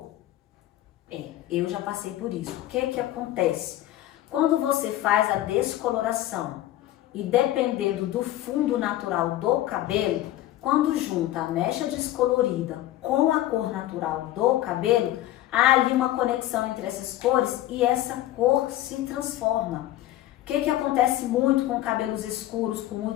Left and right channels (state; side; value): quieter; right; 14.4 dB